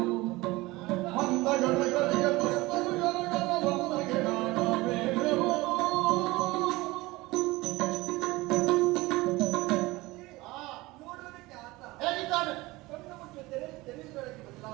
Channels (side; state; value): left; quieter; 20.9 dB